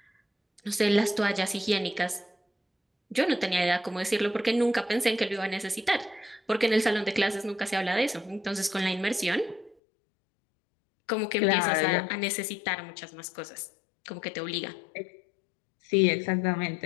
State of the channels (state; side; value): drops out; right; at 9.8 s